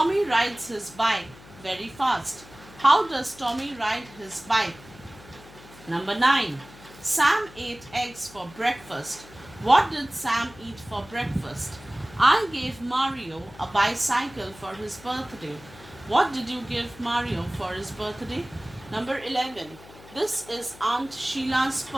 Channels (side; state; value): left; noise; hum, 20 dB below the sound